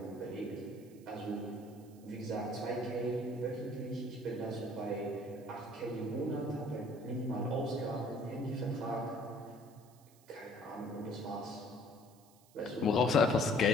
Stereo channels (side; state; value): right; noise; hiss, 27 dB below the sound